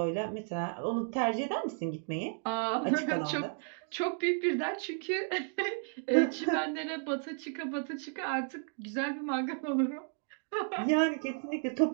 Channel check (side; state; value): left; silent; 56 dB below the other